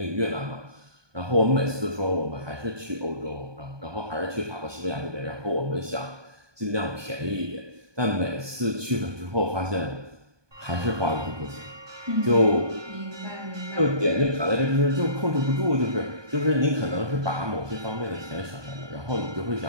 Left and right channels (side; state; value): left; late; 1.2 ms